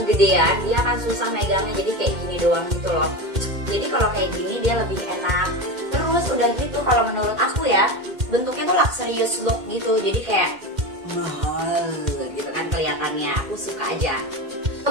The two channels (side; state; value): left; late; 2.1 ms